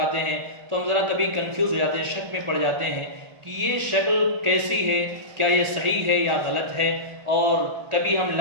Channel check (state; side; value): late; left; 1.8 ms